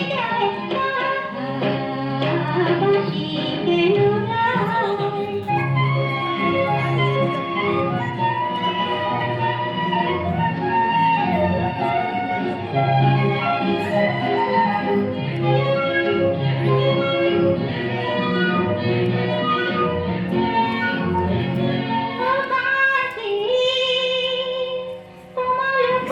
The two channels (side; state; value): both; identical; correlation 1.00